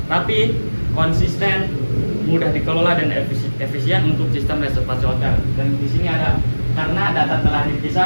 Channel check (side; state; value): both; inverted; correlation -1.00